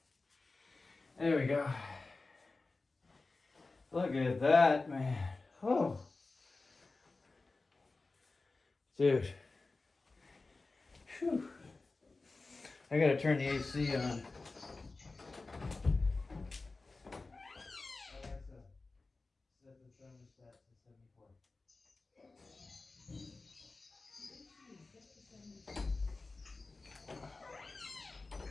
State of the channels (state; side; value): quieter; right; 3.6 dB